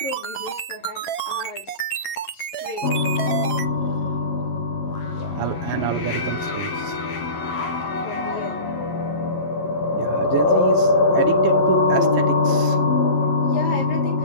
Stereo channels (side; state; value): right; late; 11 ms